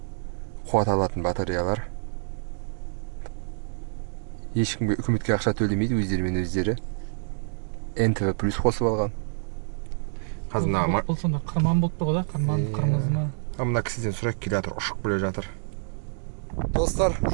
қуат алатын батареялар. Ешкімге үкіметке ақша төлемейді, өздерімен өздері. НТВ плюс қосып алған. Қазір бұл сонда қырман болып тұр ғой, қырмызы ма? Мына кісіден сұрайық, келе жатыр, ұшып келе жатыр. Достар,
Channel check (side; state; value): left; silent; digital silence